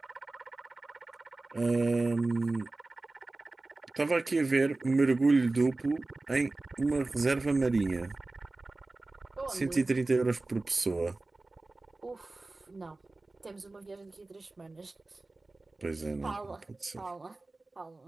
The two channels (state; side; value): quieter; left; 3.2 dB